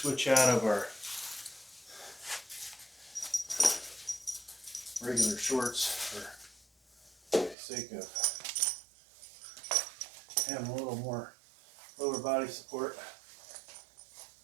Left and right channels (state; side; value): drops out; left; at 7.6 s